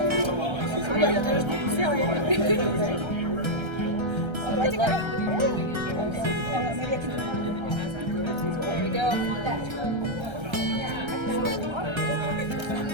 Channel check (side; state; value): left; late; 1.3 ms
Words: Oh, yeah, there's seal it. Good luck. Maybe I can. There you go.